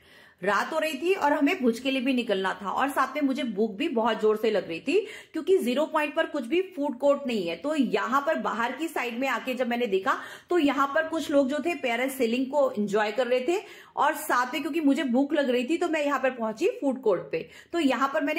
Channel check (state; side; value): identical; both; correlation 1.00